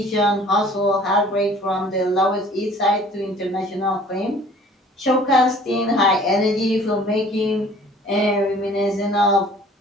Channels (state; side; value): normal; both; correlation 0.52